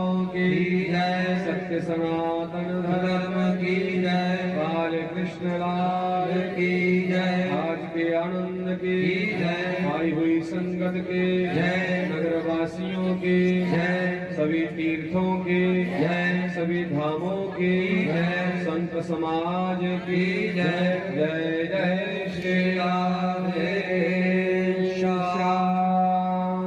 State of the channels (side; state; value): both; identical; correlation 1.00